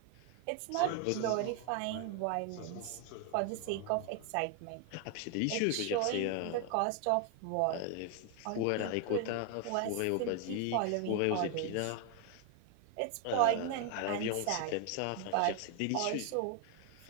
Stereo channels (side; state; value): both; different; correlation 0.01